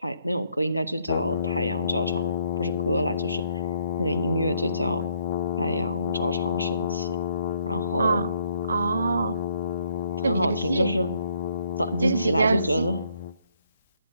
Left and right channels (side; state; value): both; inverted; correlation -0.69